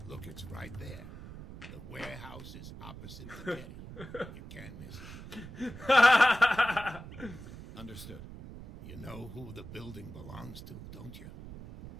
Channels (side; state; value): right; noise; rumble, 13 dB below the sound